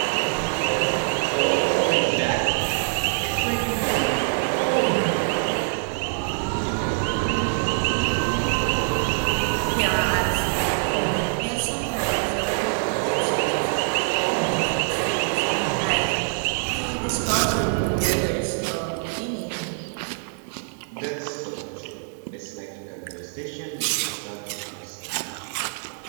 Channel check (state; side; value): silent; left; digital silence